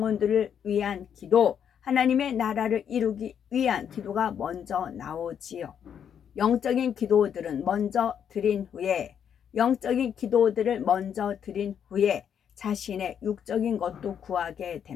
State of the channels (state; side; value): quieter; right; 8.4 dB